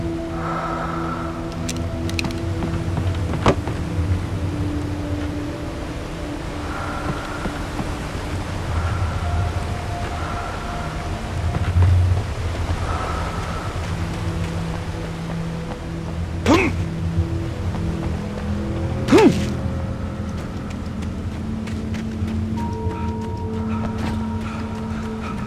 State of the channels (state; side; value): identical; both; correlation 1.00